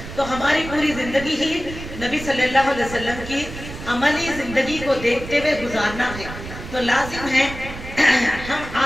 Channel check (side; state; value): right; noise; rumble, 11 dB below the sound